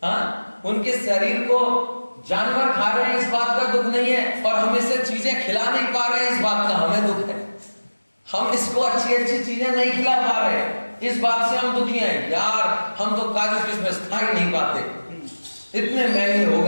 हाँ, उनके शरीर को जानवर खा रहे हैं इस बात का दुख नहीं है, और हम इसे चीजें खिला नहीं पा रहे हैं इस बात का हमें दुख है। हम इसको अच्छी चीजें नहीं खिला पा रहे, इस बात से हम दुखी हैं। यार हम तो काजू किशमिश खा ही नहीं पाते, इतने महंगे हो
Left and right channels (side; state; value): both; inverted; correlation -1.00